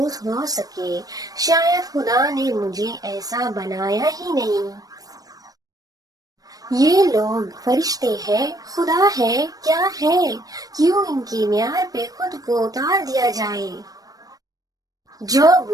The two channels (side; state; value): left; late; 0.18 ms